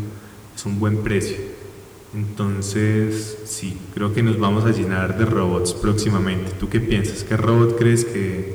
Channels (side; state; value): both; identical; correlation 1.00